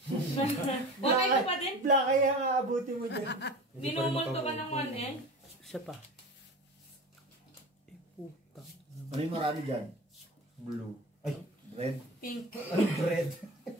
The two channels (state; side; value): normal; both; correlation 0.33